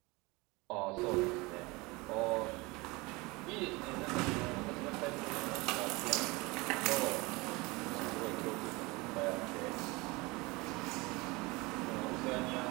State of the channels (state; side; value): quieter; left; 24.2 dB